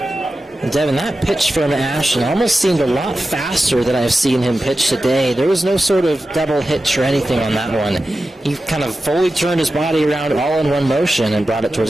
Devin, that pitch from Ashton almost seemed a lot faster than I've seen him pitch today. There was no sort of double hitch or anything on that one. He kind of fully turned his body around all in one motion and brought it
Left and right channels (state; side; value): normal; both; correlation 0.93